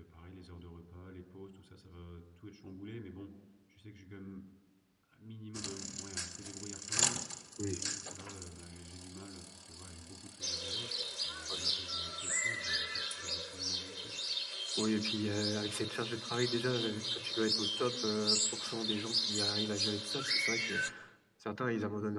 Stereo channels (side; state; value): both; identical; correlation 1.00